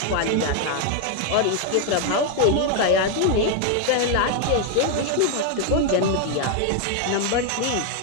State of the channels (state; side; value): different; both; correlation 0.01